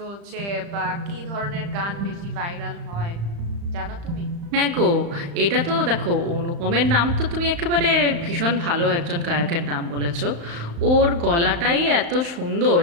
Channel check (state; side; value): late; left; 35 ms